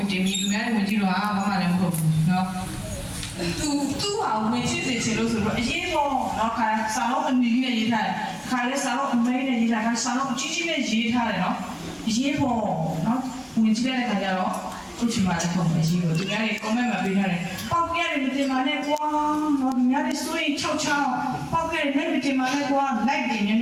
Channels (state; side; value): identical; both; correlation 1.00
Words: jemi kemudian pun je lo mama yang buat, no. Tu awak mesti celo sebut je buat, no kan selalu ni je dah. Kalau selalu ni je dah, kan selalu cici ni je dah, no. Je buat, no. Mungkin ada kerja lo. कुछ मारे को मजी हो दुनिया रे कमे में बिना रे पाके रे मिते माने को दुनिया रे सोई छौ छौ पाके रे मिते माने को लाइक दे